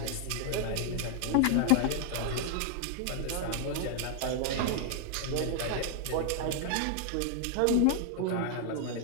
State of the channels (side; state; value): both; different; correlation 0.00